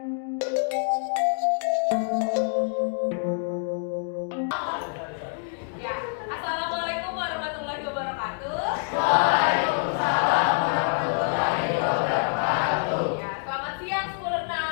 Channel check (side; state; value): right; silent; 58 dB below the other